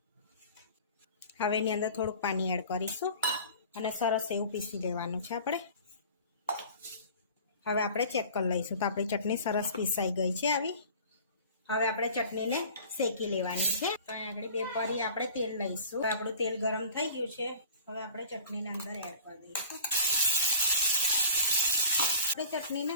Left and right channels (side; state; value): both; inverted; correlation -0.45